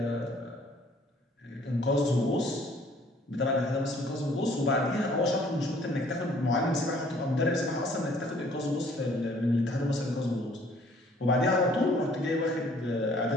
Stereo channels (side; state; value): both; normal; correlation 0.58